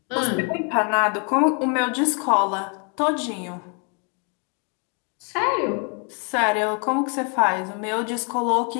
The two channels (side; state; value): right; quieter; 37.3 dB